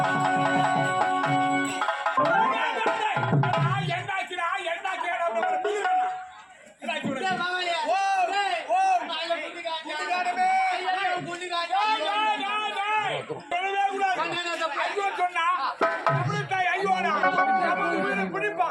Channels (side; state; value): both; identical; correlation 1.00